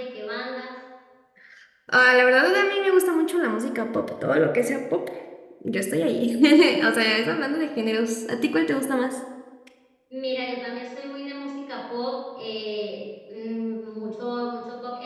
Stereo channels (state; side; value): identical; both; correlation 1.00